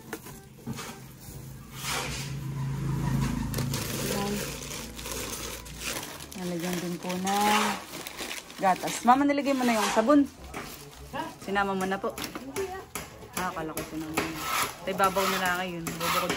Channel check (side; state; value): both; identical; correlation 1.00